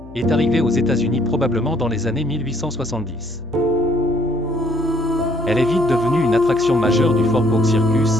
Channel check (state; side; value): noise; left; hum, 19 dB below the sound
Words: est arrivée aux États-Unis probablement dans les années 1870. Elle est vite devenue une attraction majeure du Fort Bourke